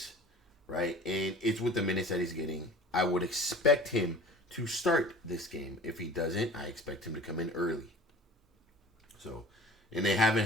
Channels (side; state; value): both; normal; correlation 0.42